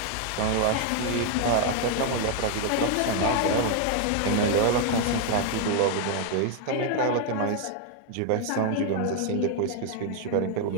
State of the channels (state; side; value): different; both; correlation 0.00